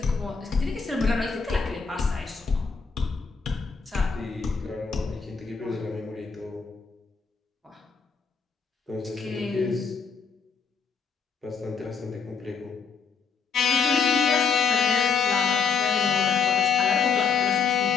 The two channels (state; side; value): quieter; right; 5.6 dB